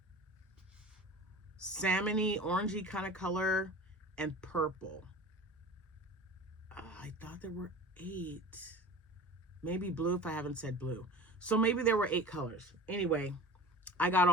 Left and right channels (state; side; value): normal; both; correlation 0.37